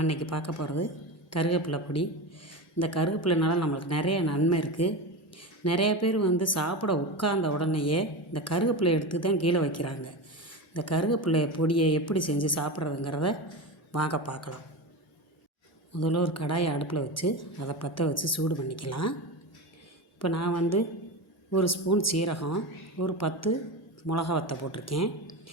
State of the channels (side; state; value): both; normal; correlation 0.23